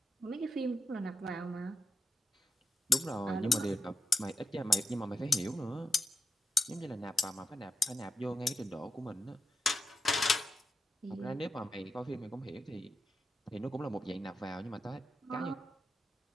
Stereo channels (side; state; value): both; normal; correlation 0.85